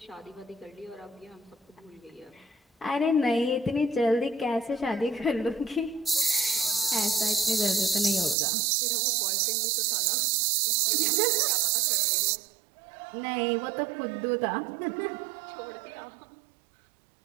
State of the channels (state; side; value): drops out; left; at 8.3 s